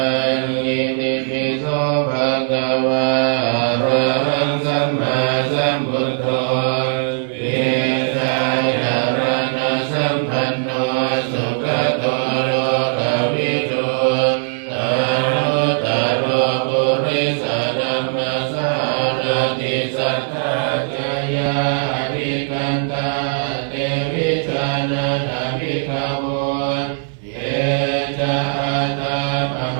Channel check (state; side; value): silent; left; 60 dB below the other